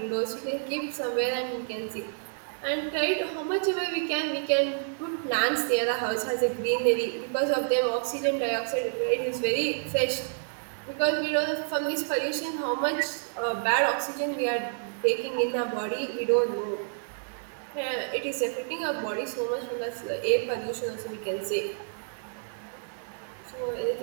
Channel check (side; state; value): left; silent; digital silence